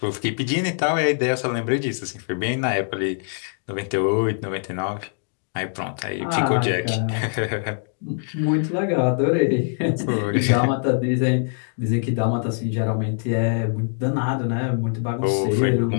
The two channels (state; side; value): silent; right; digital silence